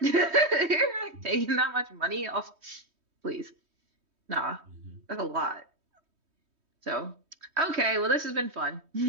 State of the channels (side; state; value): left; late; 3.2 ms